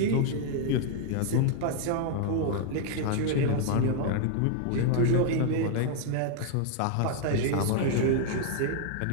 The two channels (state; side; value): different; both; correlation 0.00